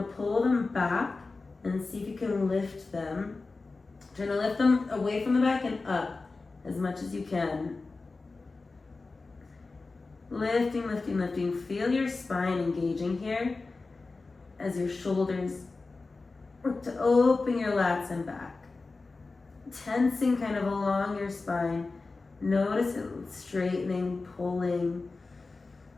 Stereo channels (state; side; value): quieter; right; 3.7 dB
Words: pull them back and see if you can lift them. Try to lift them away from the back and up as much as you can. Lifting, lifting, lifting. Feel your spine engaging here as your shoulders work to open your lats and back. Tensing kind of along your spine. Notice it straightening, pulling.